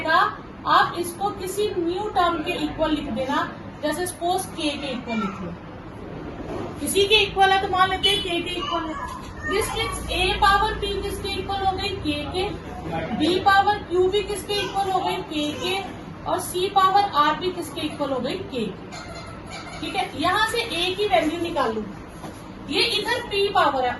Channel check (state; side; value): identical; both; correlation 1.00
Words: आप इसको किसी न्यू टर्म के इक्वल लिख देना. जैसे सपोज k के इक्वल लिख लो, किसी के इक्वल है तो मान लेते हैं k के इक्वल है. This means a power p किसके इक्वल हो गई, k के. b पावर q भी किसके इक्वल हो गई, k के. और c पावर r भी किसके इक्वल हो गई, k के. ठीक है. यहाँ से a की वैल्यू निकाल लूं. ये इधर p पावर है,